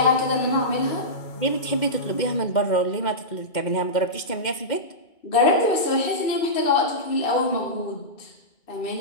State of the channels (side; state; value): right; late; 2.1 ms